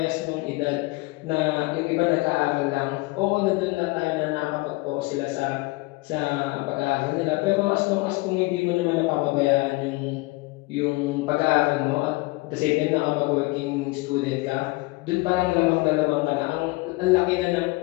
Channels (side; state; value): right; quieter; 23.1 dB